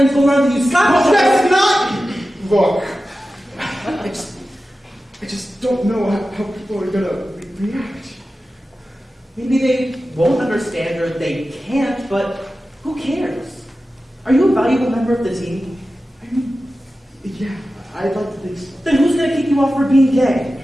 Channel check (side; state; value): both; normal; correlation 0.94